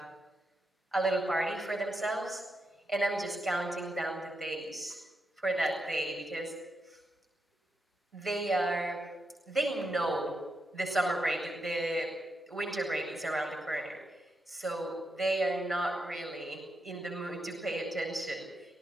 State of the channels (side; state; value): both; normal; correlation 0.84